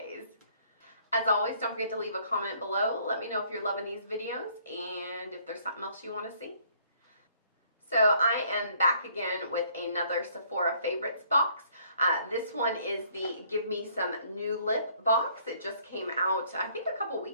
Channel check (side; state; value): both; inverted; correlation -0.63